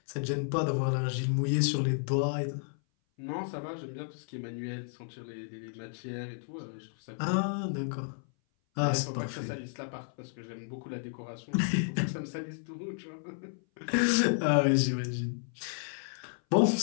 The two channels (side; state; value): right; silent; 56 dB below the other